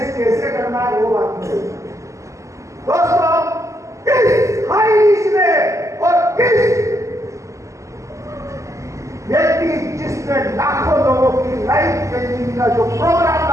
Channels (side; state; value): left; late; 0.15 ms